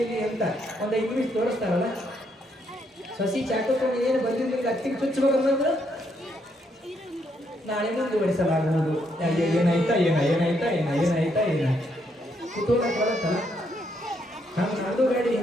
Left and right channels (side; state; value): both; normal; correlation 0.75